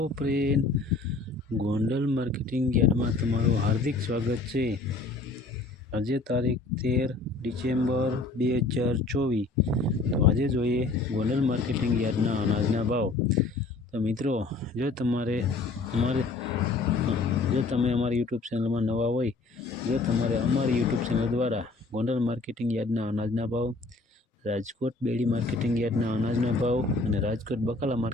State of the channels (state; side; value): quieter; right; 3.5 dB